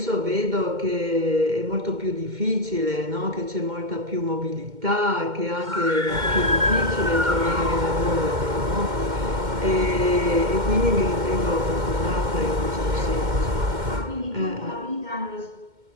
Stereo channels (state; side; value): late; left; 2.1 ms